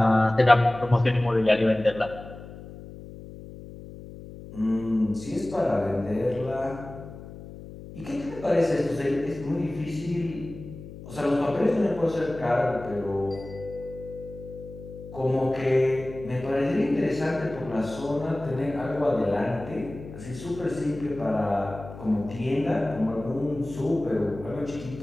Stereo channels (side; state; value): left; noise; hum, 14 dB below the sound